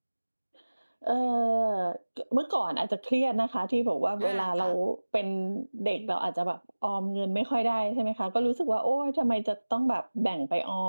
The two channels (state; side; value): inverted; both; correlation -1.00